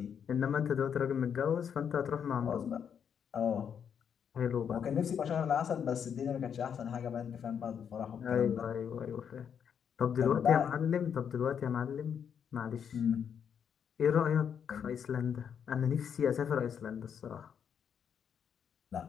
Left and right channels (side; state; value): right; quieter; 7.8 dB